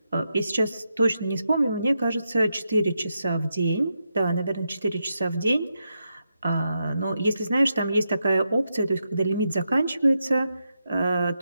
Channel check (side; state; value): both; inverted; correlation -0.85